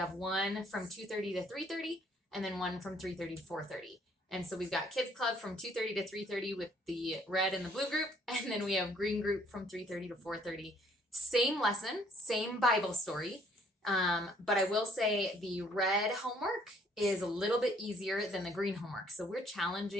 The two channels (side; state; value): both; normal; correlation 0.63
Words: one from 2:30 to 3:30, and then one from 3:30 to 4:30. And so we've got kids club from 2:30 to 3:30 with the red and the blue group, and then we have green group from 3:30 to 4:30. Same lesson, same Bible story. But I will say the red homework is a little bit easier than the green homework. So we're